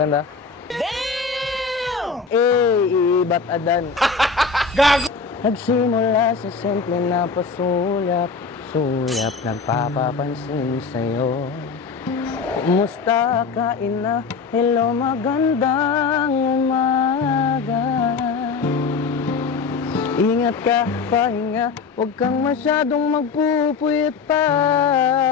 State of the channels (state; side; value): quieter; right; 5.1 dB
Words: Damn! Iibat adan. Gago! Nagsimula sa simple na pasulyap, nagpapapansin sa'yo. Kumusta ka, ina? Hello, magandang umaga. Ingat ka, pahinga, huwag kang masyadong magpupuyat pa.